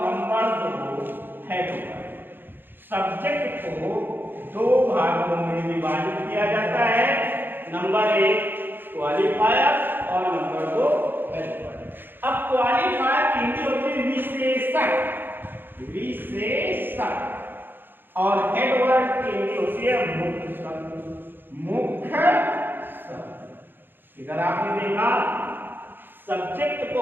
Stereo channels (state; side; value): late; left; 0.097 ms